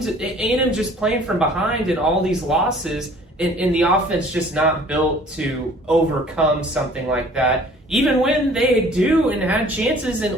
A&M just playing from behind in all these losses, and the offense just not built to overcome something like that. Even when they do and had chances in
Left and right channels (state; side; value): normal; both; correlation 0.52